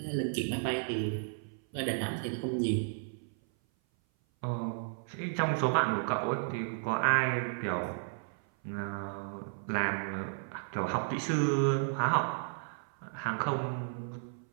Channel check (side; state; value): left; silent; 55 dB below the other